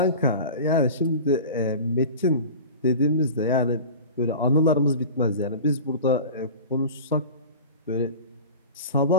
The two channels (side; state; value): both; inverted; correlation -0.35